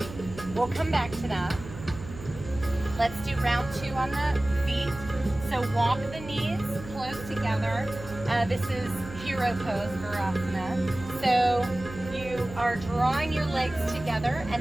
We'll come back to that. Let's do round 2 on the feet. So walk the knees close together. This is hero pose, Virasana. So you are drawing your legs together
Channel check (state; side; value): noise; right; hum, 13 dB below the sound